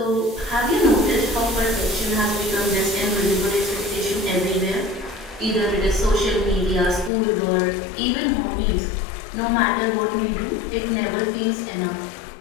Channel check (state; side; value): drops out; right; at 7.1 s